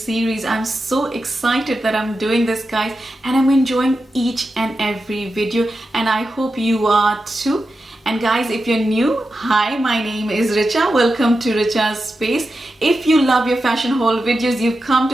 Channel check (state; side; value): normal; both; correlation 0.90